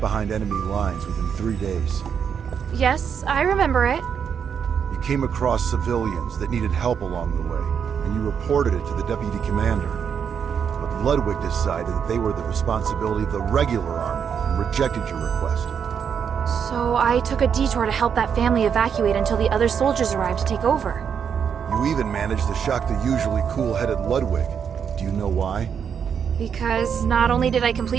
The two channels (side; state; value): left; quieter; 7.4 dB